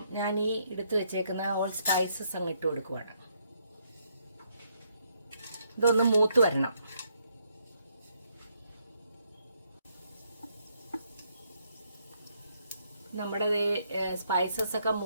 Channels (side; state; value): both; inverted; correlation -0.73